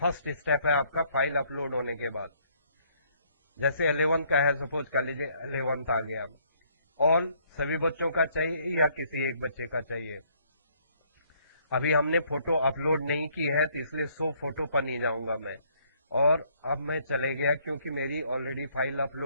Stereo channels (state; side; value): inverted; both; correlation -0.65